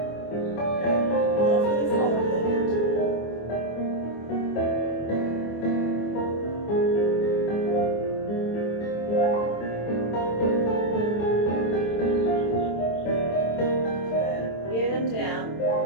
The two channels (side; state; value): right; late; 24 ms